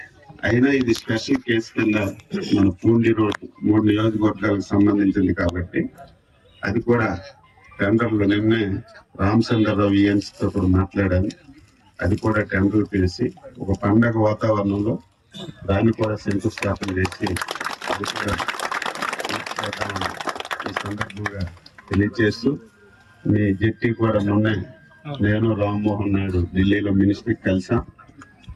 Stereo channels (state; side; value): identical; both; correlation 1.00